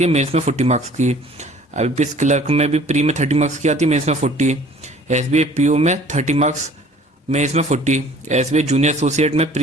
है, मेंस में 40 मार्क्स की। IBPS क्लर्क में भी प्री में 30 मार्क्स की आती है, मेंस में 40। SBI PO में 30 मार्क्स, मेंस में 40। SBI जूनियर एसोसिएट में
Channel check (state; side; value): normal; both; correlation 0.52